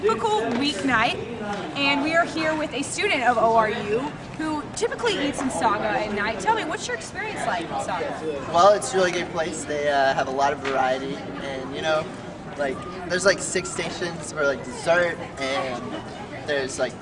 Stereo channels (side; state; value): both; identical; correlation 1.00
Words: weeknight, and we are here with a student of ORU who typically eats in Saga at night. Tell me, what's your experience like in Saga? Well, it's a really good place. They have a lot of variety, and there's like 6 stations for like dessert, and there's like